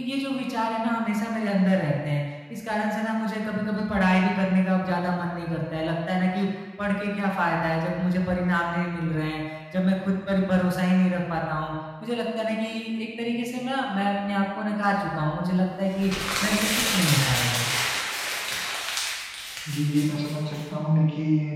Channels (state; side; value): identical; both; correlation 1.00